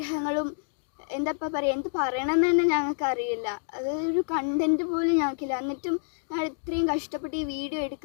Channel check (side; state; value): right; silent; digital silence